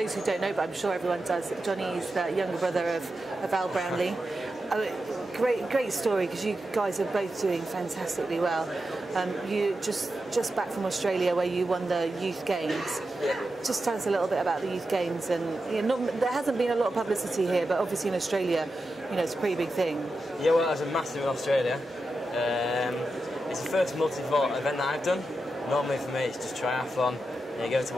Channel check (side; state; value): both; normal; correlation 0.89